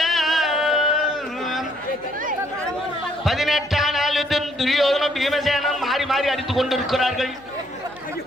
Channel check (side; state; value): left; noise; hum, 29 dB below the sound